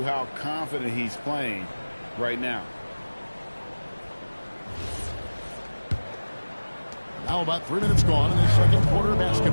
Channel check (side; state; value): both; inverted; correlation -1.00